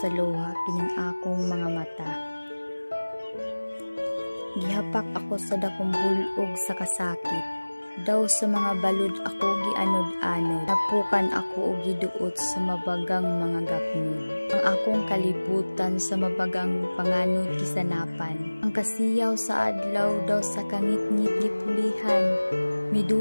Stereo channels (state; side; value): inverted; both; correlation -1.00